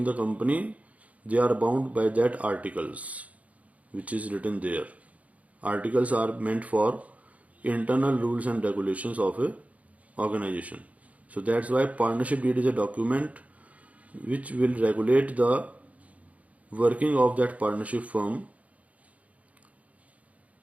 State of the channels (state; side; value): late; left; 0.068 ms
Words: the company, they are bound by that articles which is written there. Articles are meant for internal rules and regulations of a organization. So that's why partnership deed is a document which will regulate the working of that partnership firm.